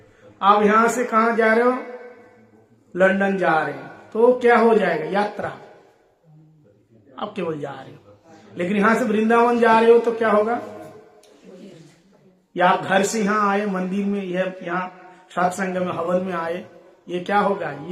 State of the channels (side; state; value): both; identical; correlation 1.00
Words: आप, यहां से कहां जा रहे हो? लंदन जा रहे हो, तो क्या हो जाएगा? यात्रा। आप केवल जा रहे हो। लेकिन यहां से वृंदावन जा रहे हो तो क्या होगा? या आप घर से यहां आए, मंदिर में, यहाँ सत्संग में, हवन में आए, ये क्या होगा?